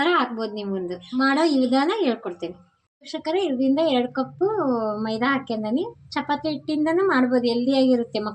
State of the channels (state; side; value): identical; both; correlation 1.00